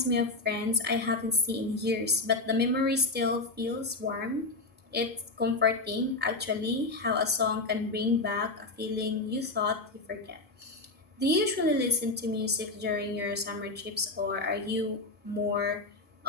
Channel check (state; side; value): quieter; right; 3.2 dB